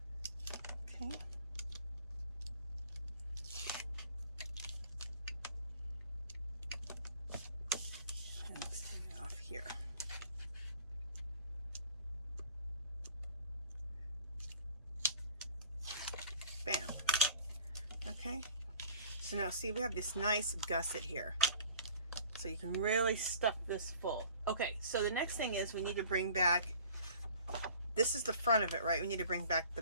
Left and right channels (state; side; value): inverted; both; correlation -0.47